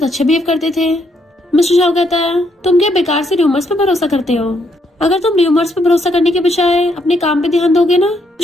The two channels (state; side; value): normal; both; correlation 0.74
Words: अच्छे बिहेव करते थे। मिस्टर शाह कहता है तुम क्या बेकार से र्यूमर्स पे भरोसा करते हो, अगर तुम र्यूमर्स पे भरोसा करने के बजाय अपने काम पे ध्यान दोगे ना